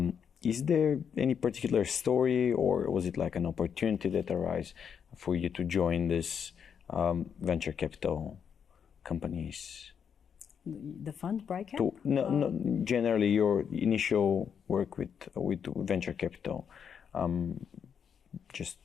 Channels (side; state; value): right; quieter; 7.4 dB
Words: Is there any particular story, or was it like an opportunity that arose for you to join this venture capital companies? The fund, BrightCap? No, generally your initial work with venture capital. Is